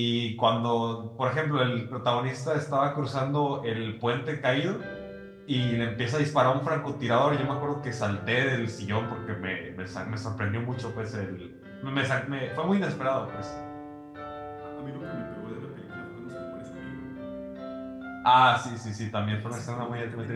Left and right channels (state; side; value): identical; both; correlation 1.00